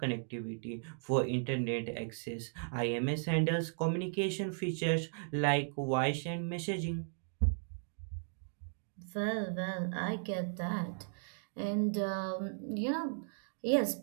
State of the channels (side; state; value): left; silent; digital silence